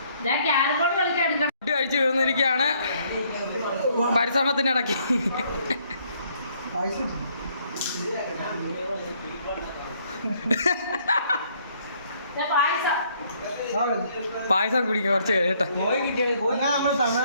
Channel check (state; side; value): inverted; both; correlation -0.66